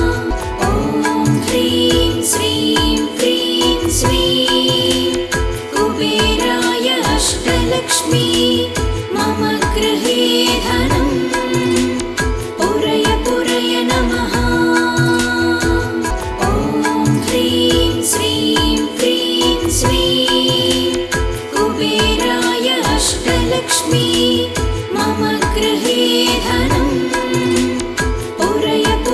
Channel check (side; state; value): both; identical; correlation 1.00